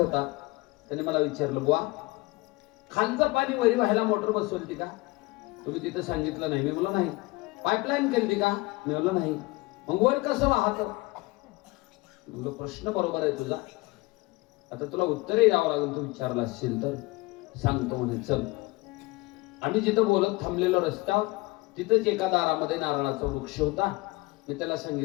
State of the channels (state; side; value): quieter; right; 22.9 dB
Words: त्याने मला विचारलं, बुवा खालचं पाणी वरी व्हायला मोटर बसवली का? तुम्ही तिथं सांगितलं नाही. मी म्हणलो नाही. पाईपलाईन केली का? मी म्हणलो नाही. मग वर कसं वाहत? म्हणलो प्रश्न बरोबर आहे तुझा, आता तुला उत्तरही द्यावं लागेल. तू विचारला असशील तर सांगतो म्हणे. चल. आम्ही जिथं बोलत थांबलेलो रस्त्यावर तिथंच एका दारामध्ये नारळाचा वृक्ष होता. मी त्याला